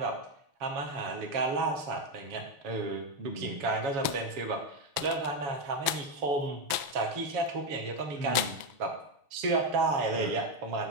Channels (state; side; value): late; left; 6.1 ms